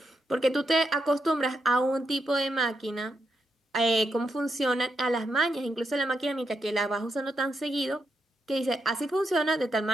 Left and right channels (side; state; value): both; normal; correlation 0.82